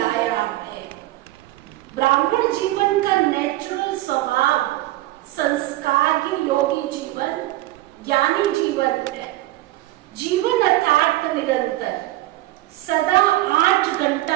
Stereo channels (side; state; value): left; quieter; 16.8 dB